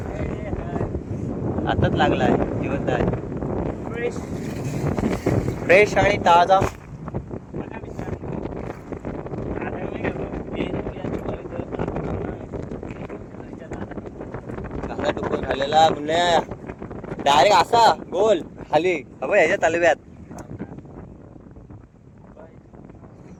आताच लागला आहे. जिवंत आहे. फ्रेश आणि ताजा. कसा टुकून खाल्लेला पुण्या डायरेक्ट असा गोल खाली ह्याच्या तलव्यात.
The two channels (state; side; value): identical; both; correlation 1.00